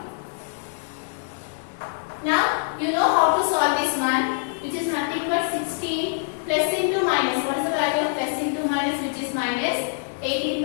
Now you know how to solve this one, which is nothing but 16 plus into minus. What is the value of plus into minus, which is minus 18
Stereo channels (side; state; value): right; silent; digital silence